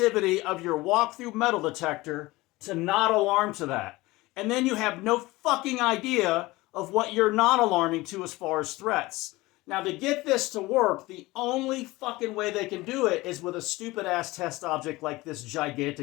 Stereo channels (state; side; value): quieter; right; 20.3 dB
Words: of your walk-through metal detector to not alarm to that. And then you have no fucking idea of what you're not alarming to as far as threats. Now, to get this to work, the only fucking way they can do it is with a stupid-ass test object like this